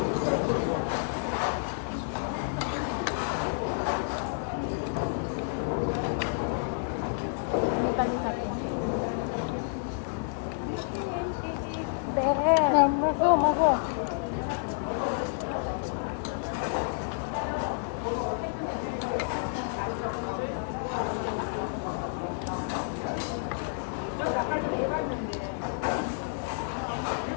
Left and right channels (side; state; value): right; silent; 58 dB below the other